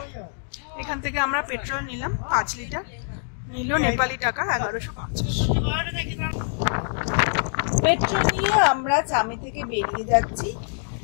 এখান থেকে আমরা পেট্রোল নিলাম 5 লিটার, নিল নেপালি টাকা 1150। পেট্রোল নিয়ে আমরা চামে থেকে বেরিয়ে যাচ্ছি।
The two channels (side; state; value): right; silent; digital silence